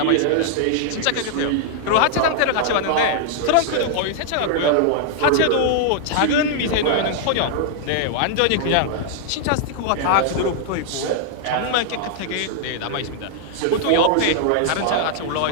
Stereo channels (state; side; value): different; both; correlation -0.01